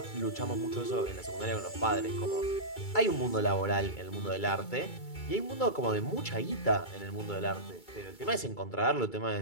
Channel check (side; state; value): right; late; 2.3 ms